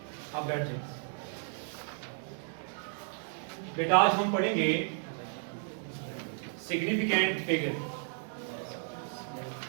आप बैठ जाए बेटा। आज हम पढ़ेंगे सिग्निफिकेंट फिगर।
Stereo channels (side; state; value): left; silent; 55 dB below the other